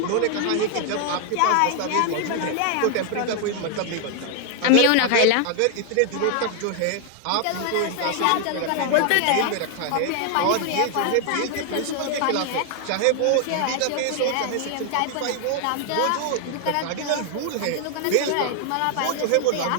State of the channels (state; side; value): different; both; correlation 0.00